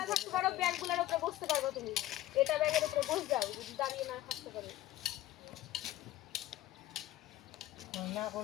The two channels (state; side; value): quieter; right; 14.8 dB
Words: থাকতে পারো ব্যাগগুলোর উপরে বসতে পারবে তুমি এটা ব্যাগের উপরে বসে যাও যদি দাঁড়িয়ে না থাকতে পারো না